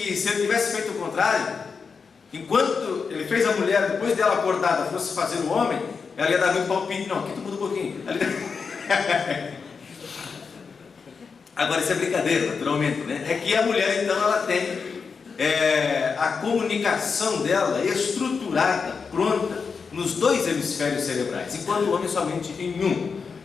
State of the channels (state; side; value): quieter; right; 5.4 dB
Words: se ele tivesse feito o contrário, enquanto ele fez a mulher, depois dela acordada, fosse fazer o homem, ela ia dar muito palpite. Não, aqui tu muda um pouquinho. Agora isso é brincadeira, naturalmente, né? É que a mulher então ela tem a comunicação dela estruturada, pronta, nos 2 hemisférios cerebrais, enquanto o homem somente em um.